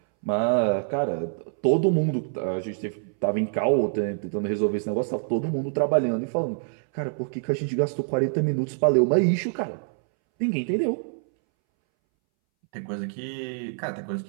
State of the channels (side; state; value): left; silent; 61 dB below the other